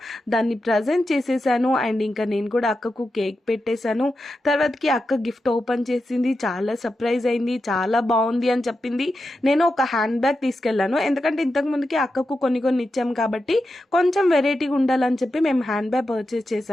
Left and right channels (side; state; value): both; normal; correlation 0.89